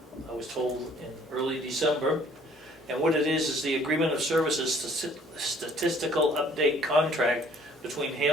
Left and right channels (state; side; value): normal; both; correlation 0.58